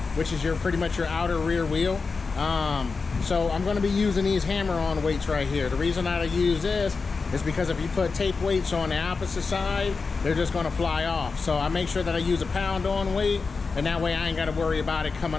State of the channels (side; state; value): right; quieter; 4.5 dB